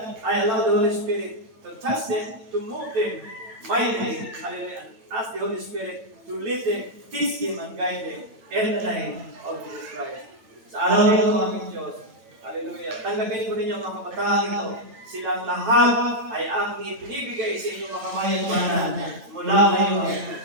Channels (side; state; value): left; late; 9.0 ms